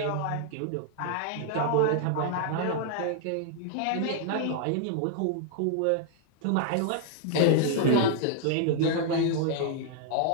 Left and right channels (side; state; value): both; different; correlation 0.00